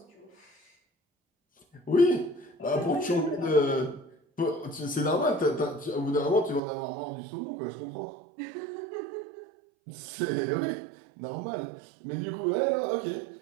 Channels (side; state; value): left; drops out; at 6.6 s